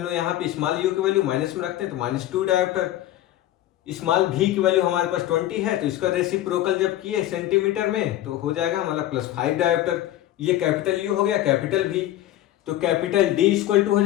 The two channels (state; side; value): quieter; right; 13.9 dB